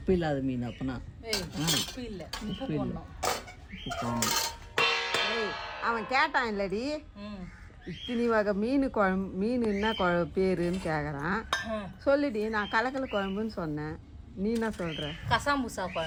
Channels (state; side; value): identical; both; correlation 1.00